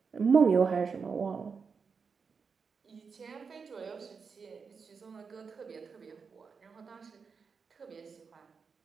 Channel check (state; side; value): quieter; left; 5.5 dB